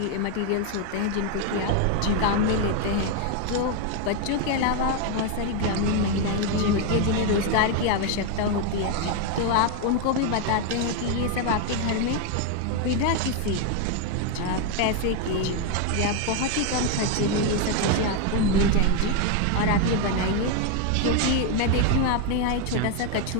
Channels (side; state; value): both; different; correlation 0.01